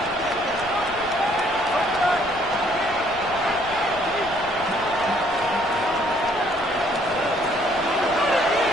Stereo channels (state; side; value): noise; left; rumble, 18 dB below the sound